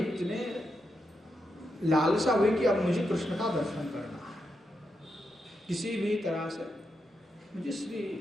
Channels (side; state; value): both; normal; correlation 0.85